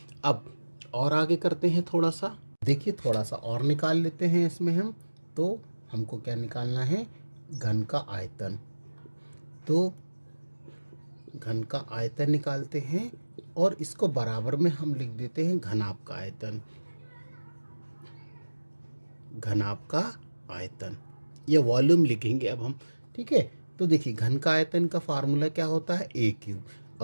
अब और आगे करते हैं थोड़ा सा, देखिए थोड़ा सा और निकाल लेते हैं इसमें हम। तो हमको क्या निकालना है, घन का आयतन। तो घन का आयतन निकालते हैं, और इसको बराबर में हम लिख देते हैं घनाभ का आयतन, घनाभ का आयतन, ये वॉल्यूम लिखेंगे अब हम, ठीक है। तो देखिए घन का आयतन का फार्मूला क्या होता है A3,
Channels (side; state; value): both; inverted; correlation -1.00